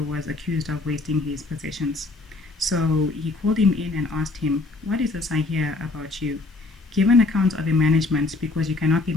was accused of wasting his possessions. So he called him in and asked him, what is this I hear about you? Give an account of your management, because you cannot be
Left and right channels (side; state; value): right; quieter; 3.4 dB